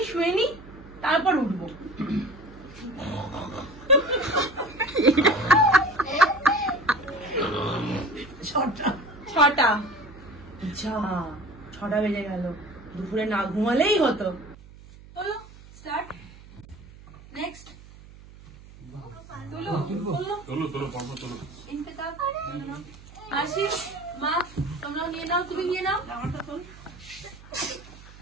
শুয়ে নি, তারপর উঠবো। 6টা। যা 6টা বেজে গেল, দুপুরে না ঘুমালেই হতো। চলো স্টার্ট। নেক্সট আসি। মা তোমরাও নিয়ে নাও, তুমি নিয়ে নাও।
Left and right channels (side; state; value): right; noise; hum, 20 dB below the sound